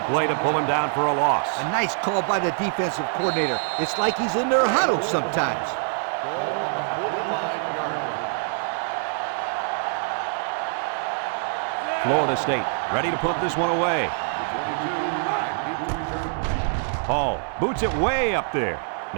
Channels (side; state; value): left; silent; 60 dB below the other